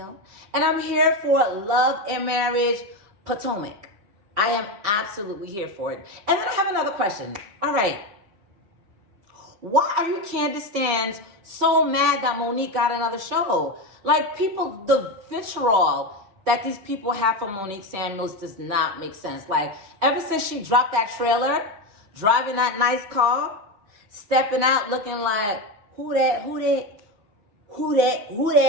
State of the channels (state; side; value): late; left; 5.2 ms